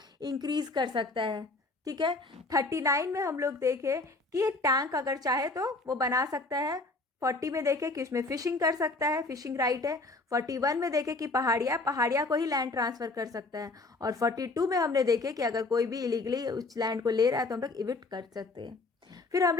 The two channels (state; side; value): quieter; right; 3.3 dB